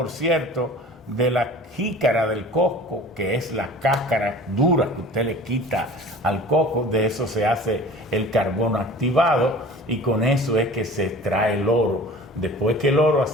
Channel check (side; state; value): both; normal; correlation 0.43